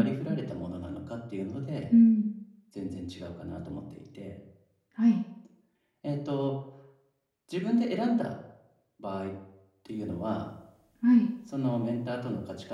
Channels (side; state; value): both; identical; correlation 1.00